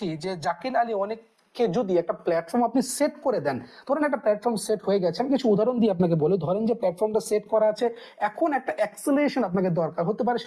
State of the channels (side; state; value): both; identical; correlation 1.00